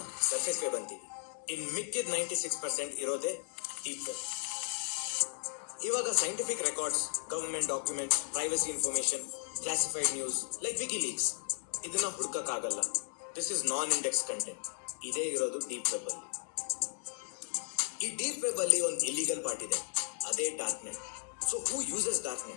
ಸರ್ಫೇಸ್ ವೆಬ್ ಅಂತೀವಿ. ಇನ್ ಮಿಕ್ಕಿದ 96% ಇರೋದೇ ಡೀಪ್ ವೆಬ್. ಇವಾಗ scientific records, government documents, privacy information, classified news like WikiLeaks ಇದನ್ನ ಹುಡುಕಕ್ಕಾಗಲ್ಲ. This is non index content. ಇದೇ ಇರೋದು ಡೀಪ್ ವೆಬ್ ಅಲ್ಲಿ. ಈ ಡೀಪ್ ವೆಬ್ ಅಲ್ಲಿ ಒಂದು ಇಲ್ಲಿಗಲ್ ಪಾರ್ಟ್ ಇದೆ, ಅದೇ dark net. So who uses dark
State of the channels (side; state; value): right; silent; 54 dB below the other